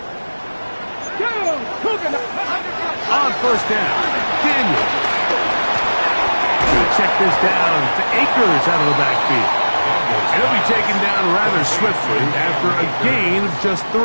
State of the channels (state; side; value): inverted; both; correlation -1.00